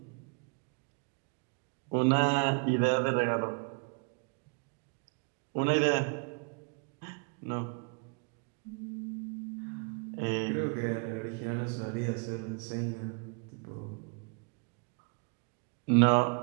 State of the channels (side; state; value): left; quieter; 37.7 dB